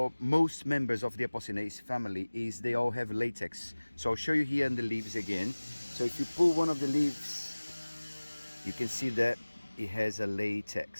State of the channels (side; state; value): both; inverted; correlation -1.00